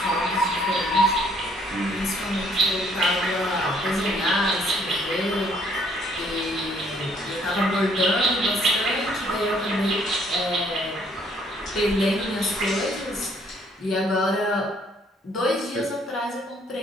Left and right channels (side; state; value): both; normal; correlation 0.64